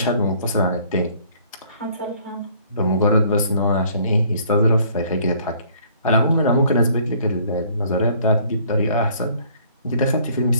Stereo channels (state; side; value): inverted; both; correlation -0.59